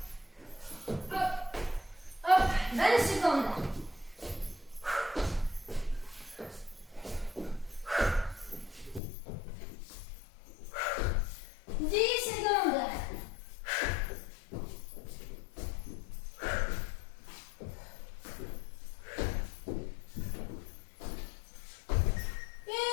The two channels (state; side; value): drops out; right; at 9.0 s